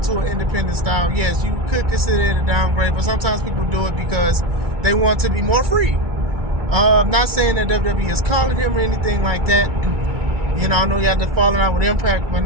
to an independent style, yes, you could consider it a downgrade, but sometimes people do it because they want to be more free. I'm not saying that WWE is calling him or anything like that. You know, I know you had to falling out with Impact by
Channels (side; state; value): left; late; 2.3 ms